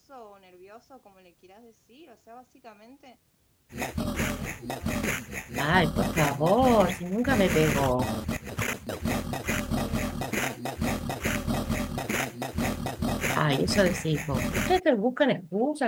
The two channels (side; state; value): both; identical; correlation 1.00